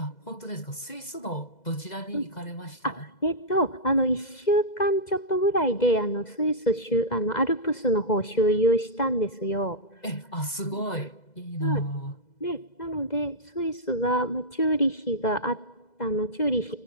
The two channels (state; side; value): late; right; 2.0 ms